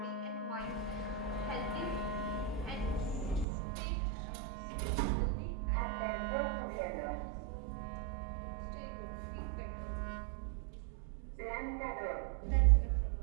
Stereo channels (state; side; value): drops out; left; at 3.5 s